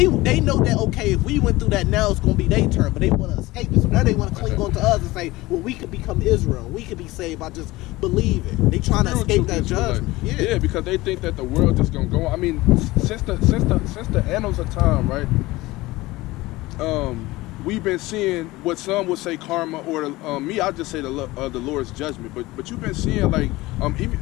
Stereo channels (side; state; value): right; quieter; 19.6 dB